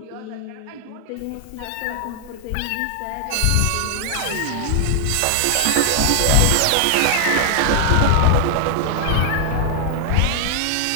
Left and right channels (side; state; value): both; different; correlation 0.00